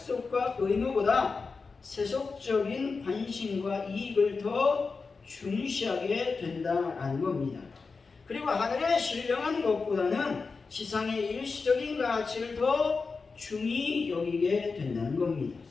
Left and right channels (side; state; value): right; quieter; 4.5 dB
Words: 의무보다 세속적인 관심과 이익을 더 중시하게 된다라는 겁니다. 그리고 하늘에 신령한 것보다는 지상의 일시적인 가치를 더 중히 여기게 된다는 겁니다.